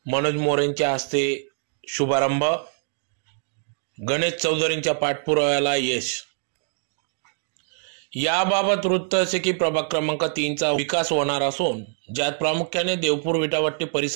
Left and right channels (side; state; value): left; silent; digital silence